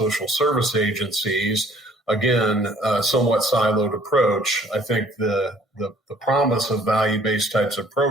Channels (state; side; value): normal; both; correlation 0.57